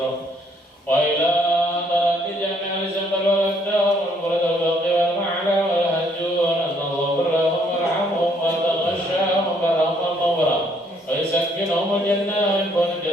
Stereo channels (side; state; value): both; normal; correlation 0.67